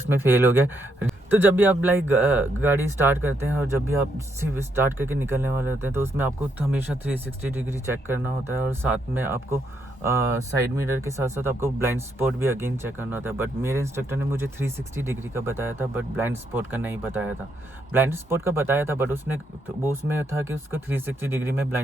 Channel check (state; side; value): normal; both; correlation 0.76